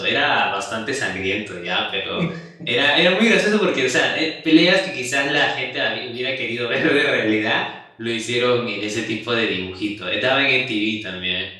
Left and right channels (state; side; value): identical; both; correlation 1.00